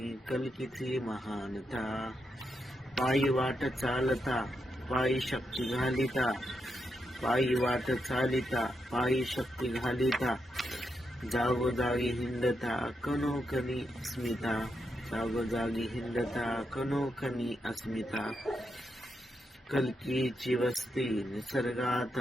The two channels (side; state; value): both; normal; correlation 0.83